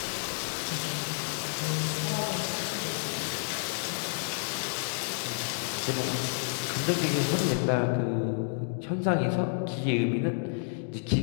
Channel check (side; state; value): right; silent; digital silence